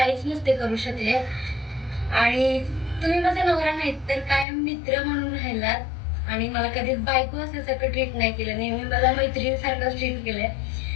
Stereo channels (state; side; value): drops out; right; at 4.5 s